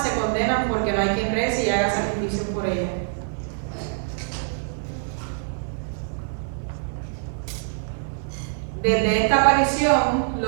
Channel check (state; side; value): silent; left; digital silence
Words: se condenan porque no hay quien rece y haga sacrificios por ellas. Desde esta aparición,